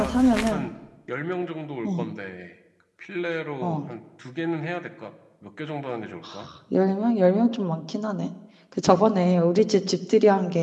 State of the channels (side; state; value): both; identical; correlation 1.00